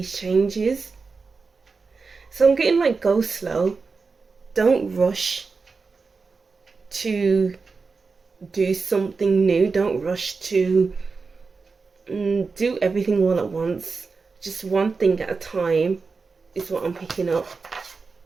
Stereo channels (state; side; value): quieter; left; 4.5 dB